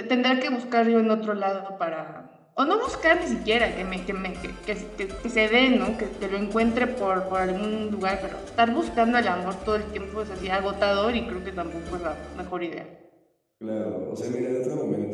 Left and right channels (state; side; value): identical; both; correlation 1.00